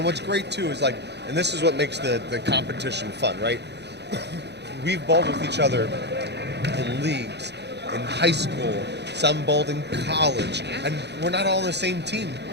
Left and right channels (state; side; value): late; left; 0.50 ms